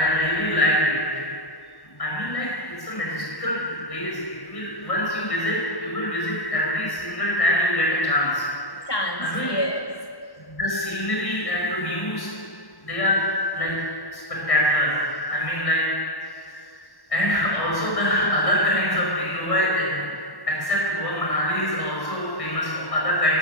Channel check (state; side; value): late; right; 1.1 ms